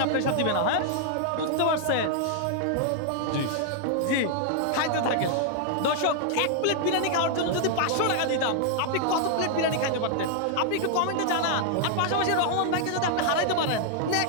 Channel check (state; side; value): different; both; correlation -0.01